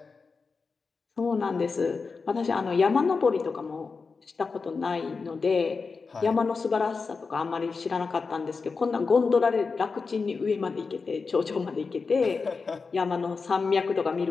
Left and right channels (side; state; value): right; quieter; 4.7 dB